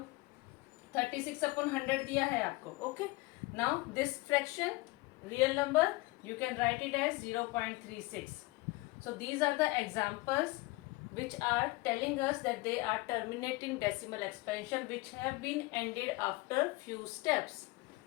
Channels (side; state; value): right; quieter; 22.2 dB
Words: 36/100 दिया है आपको. Okay, now this fraction real number you can write it as 0.36. So these are the examples which are telling us that they are terminating decimal expansion which have been ended after few steps.